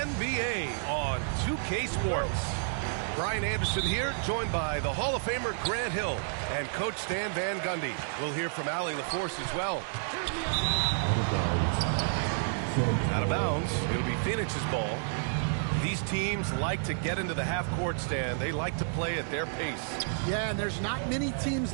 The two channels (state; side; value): silent; left; digital silence